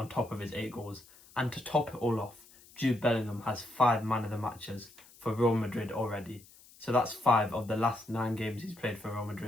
top of his 8 goals, and to top it all off, Jude Bellingham has 5 man of the matches for Real Madrid already. So that's 5 of the last 9 games he's played for Real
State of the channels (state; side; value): noise; left; hiss, 24 dB below the sound